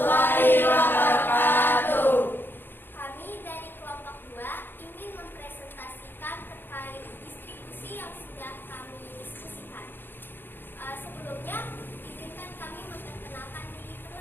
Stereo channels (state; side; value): late; right; 0.098 ms